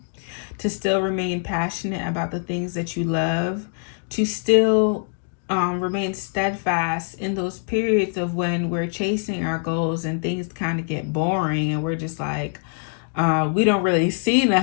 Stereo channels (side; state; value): right; silent; 63 dB below the other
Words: to still remain passionate about the things that you love, to still remain steadfast in those periods of when we're chasing our goals and things kind of get boring and we're just like, we don't really see